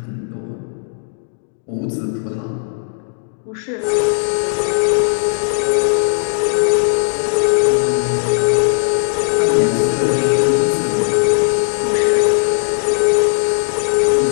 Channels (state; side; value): silent; right; digital silence